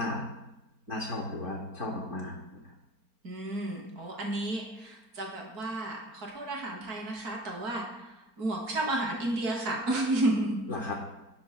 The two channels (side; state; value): left; late; 4.4 ms